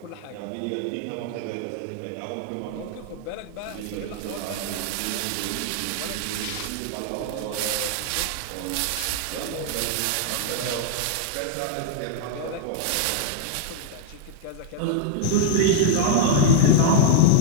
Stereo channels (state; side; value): different; both; correlation 0.00